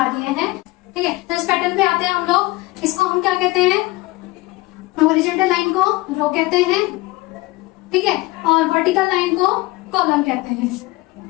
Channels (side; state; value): right; quieter; 20.8 dB